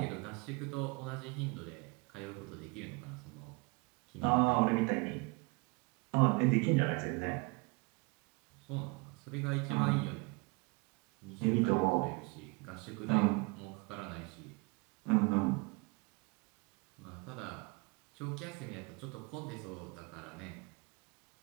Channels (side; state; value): left; quieter; 29.6 dB